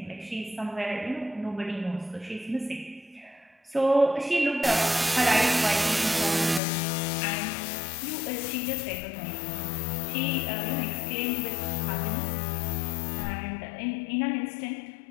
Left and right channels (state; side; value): drops out; right; at 6.6 s